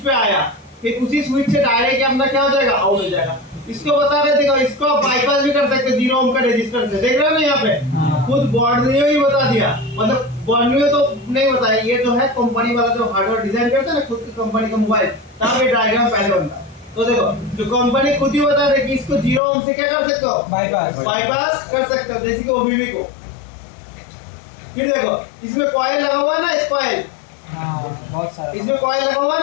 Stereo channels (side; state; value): right; drops out; at 19.4 s